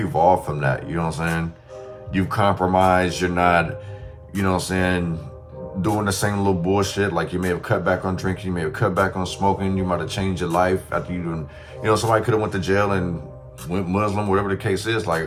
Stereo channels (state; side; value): identical; both; correlation 1.00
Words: from that, you know what I'm saying? You've compromised, you're not, you know what I'm saying, doing the same little bullshit. Like you may have cut back on drinking, you may have cut back on smoking, you might have changed your life after you doing, you know, somebody could have went to jail and went Muslim, whatever the case is, like a